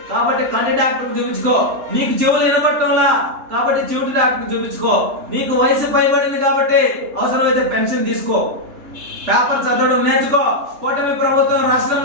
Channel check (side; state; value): left; late; 3.3 ms